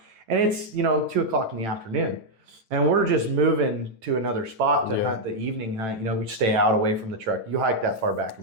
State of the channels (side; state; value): left; late; 9.1 ms